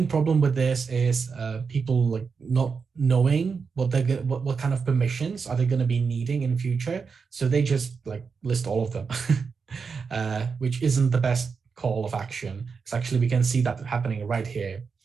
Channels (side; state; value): left; quieter; 5.4 dB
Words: problem with this is people like not knowing what kind of permissions are they going to be needing in future. So they just like list all of them, which isn't the best call of action. It's actually, we can see that happening right here.